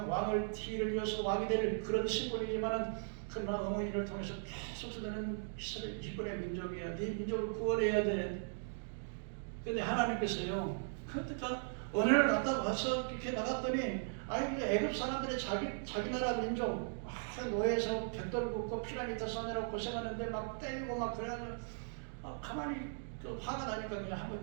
왕을 티를 이어서 왕이 될 그런 심벌이지만은 그러나 어머니를 통해서 계속 너는 이스라엘 히브리 민족이야. 네 민족을 구원해야 돼. 근데 하나님께서요. 그러니까 어느 날 갔다 와서 이렇게 나갔더니 애굽 사람들이 자기 나라 민족 노예에서 벽돌 굽고 피라미드 쌓느라고 고생하는데 막 때리고 막 그래가지고 가만히 화가 나니까 그냥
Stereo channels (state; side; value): silent; left; digital silence